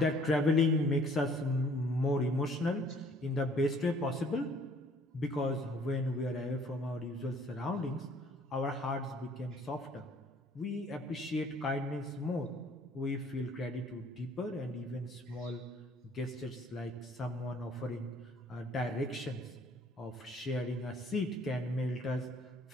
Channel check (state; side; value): normal; both; correlation 0.58